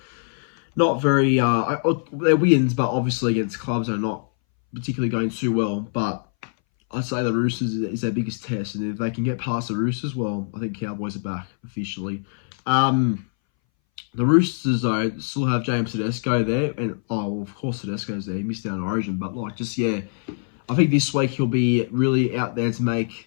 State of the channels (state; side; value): silent; right; 61 dB below the other